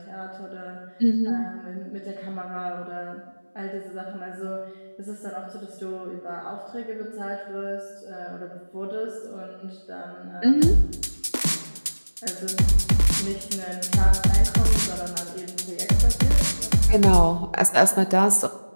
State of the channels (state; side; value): inverted; both; correlation -1.00